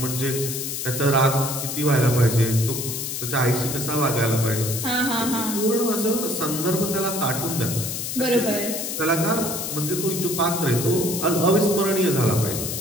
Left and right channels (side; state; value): left; noise; hiss, 4 dB below the sound